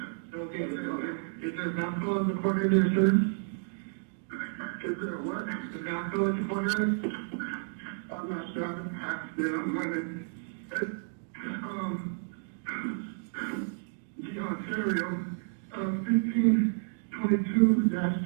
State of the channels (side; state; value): left; silent; digital silence